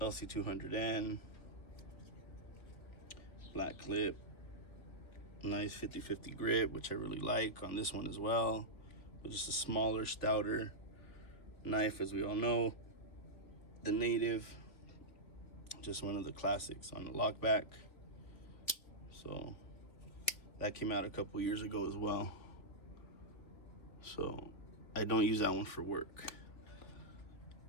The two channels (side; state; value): right; late; 3.4 ms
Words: LC200N, black clip, nice 50/50 grip, which I really like on this one as well. But just a smaller, stouter knife, as we all know. The Native, just one of the classics on the lockback. So that came out a couple years ago as well. So I don't use that one for work.